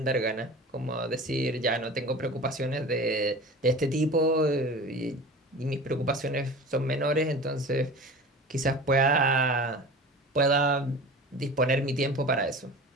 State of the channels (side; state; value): both; normal; correlation 0.37